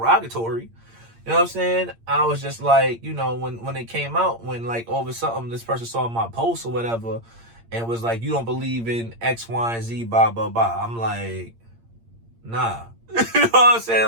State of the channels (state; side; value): late; left; 8.7 ms